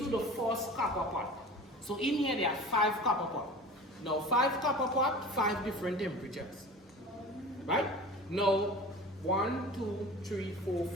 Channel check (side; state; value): both; normal; correlation 0.38